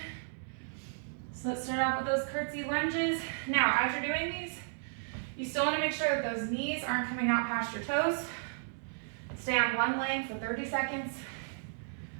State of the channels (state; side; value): silent; left; digital silence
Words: So let's start off with those curtsy lunges. Now, as you're doing these, you still wanna make sure that those knees aren't coming out past your toes. Stay on one leg for 30 seconds.